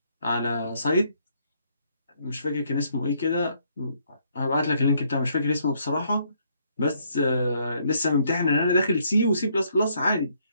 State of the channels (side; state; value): both; inverted; correlation -0.70